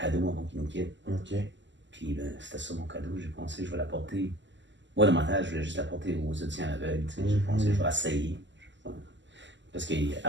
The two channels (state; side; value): late; left; 0.54 ms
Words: avant qu'il nous quitte. OK. Puis c'était ça mon cadeau, j'ai pensé je vais l'apporter. Moi, dans ma tête, je voulais juste l'apporter aux auditions aveugles. J'ai pensé je vais essayer. Parce